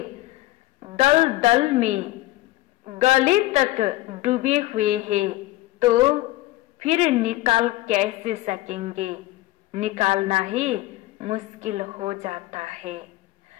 दल दल में गले तक डूबे हुए हैं, तो फिर निकाल कैसे सकेंगे? निकालना ही मुश्किल हो जाता है।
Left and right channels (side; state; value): right; quieter; 17.9 dB